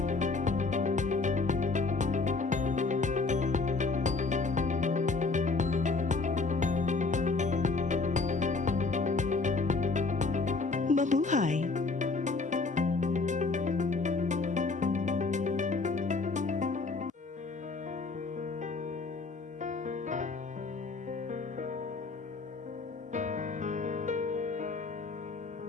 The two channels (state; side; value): quieter; right; 3.9 dB